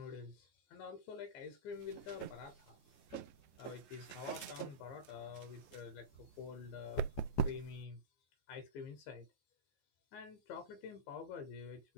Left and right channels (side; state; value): right; late; 14 ms